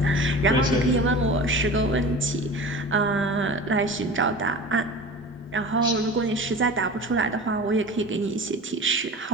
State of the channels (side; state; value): both; normal; correlation 0.35